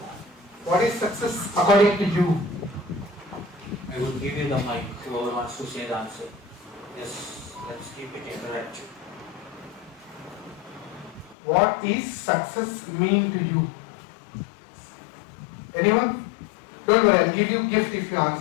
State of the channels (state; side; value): drops out; right; at 11.4 s